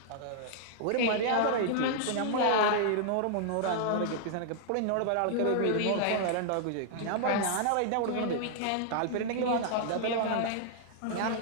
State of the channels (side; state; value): both; different; correlation -0.01